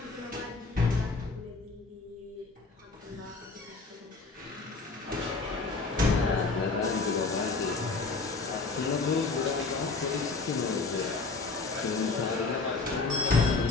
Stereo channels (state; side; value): quieter; right; 3.9 dB